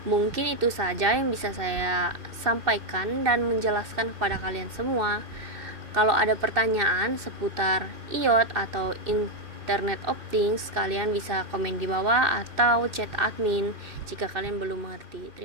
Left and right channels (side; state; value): left; late; 2.6 ms